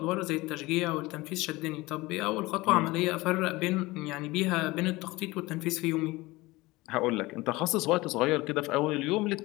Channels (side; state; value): right; quieter; 21.0 dB